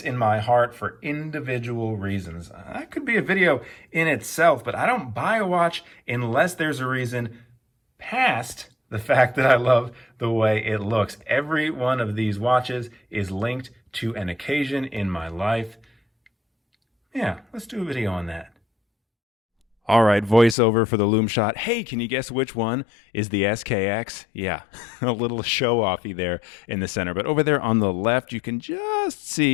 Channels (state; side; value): drops out; right; at 20.6 s